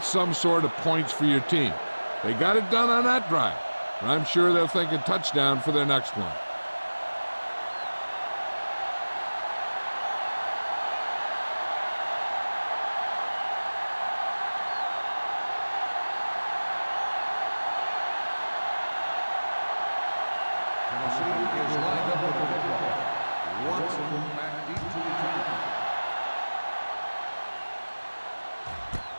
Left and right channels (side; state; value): both; inverted; correlation -1.00